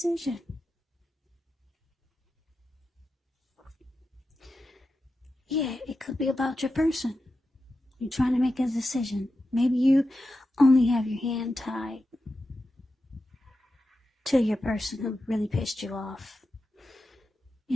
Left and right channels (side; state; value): both; normal; correlation 0.90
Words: Yeah, it could be about your person. You're trying to make a decision. Maybe you only have your hand tied to your person who really pissed you off